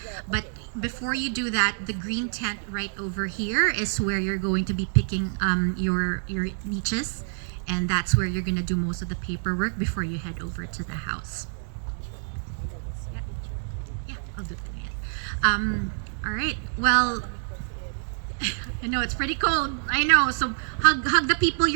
But before you do that, the green tent right over here is where you're going to be picking your niches, and that's where you're going to do most of the paperwork before you head over to the house. Yeah, I'll do that. All right, well, I know it's pretty cold. I know. So hug the people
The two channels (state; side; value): silent; left; digital silence